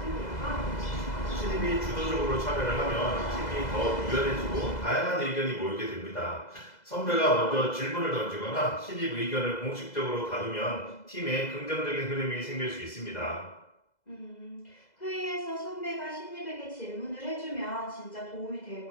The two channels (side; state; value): right; late; 2.0 ms